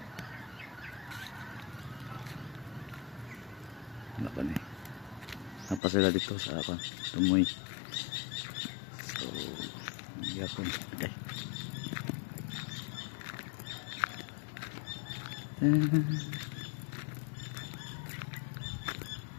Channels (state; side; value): drops out; right; at 5.8 s